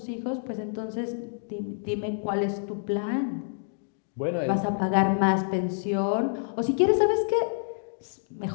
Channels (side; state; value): right; silent; digital silence